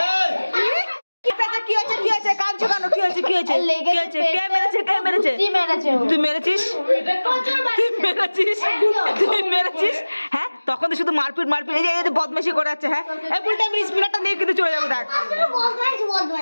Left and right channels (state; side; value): inverted; both; correlation -1.00